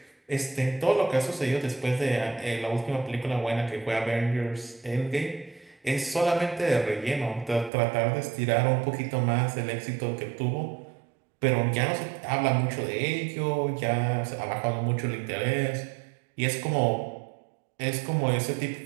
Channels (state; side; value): drops out; left; at 7.7 s